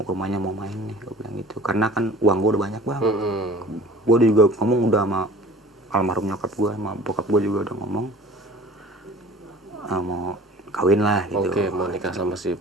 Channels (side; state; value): both; normal; correlation 0.45